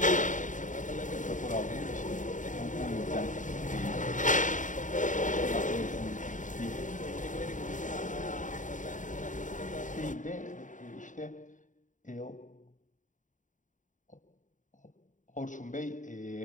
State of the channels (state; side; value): late; right; 0.37 ms